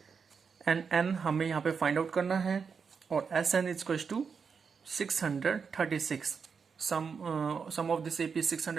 एंड n हमें यहाँ पे फाइंड आउट करना है, और S n is to 636. Sum of this AP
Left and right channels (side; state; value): left; quieter; 5.9 dB